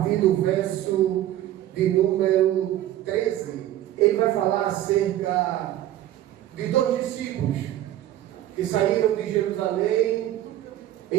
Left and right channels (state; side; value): quieter; left; 13.2 dB